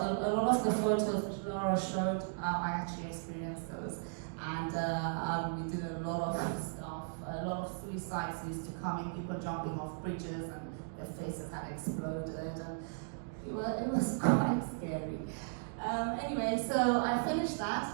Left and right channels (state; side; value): silent; left; digital silence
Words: A lot of the photos which Laura showed, I actually experienced those. And we did a lot of stuff. A lot of suicides used to come in, people jumping off bridges and their faces had exploded. And it was quite scary. Anyway, so I finished